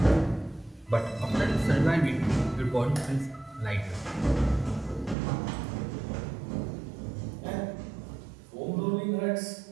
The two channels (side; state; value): left; drops out; at 5.2 s